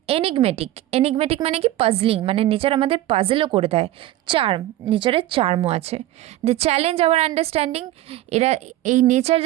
এনিগমেটিক মানে কি? পাজলিং, মানে নেচার আমাদের পাজলও করে দেয়। চার্ম, নেচারের চার্মও আছে। দ্য চ্যালেঞ্জ আওয়ার আন্ডারস্ট্যান্ডিং, এরা এই নেচার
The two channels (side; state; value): left; quieter; 14.9 dB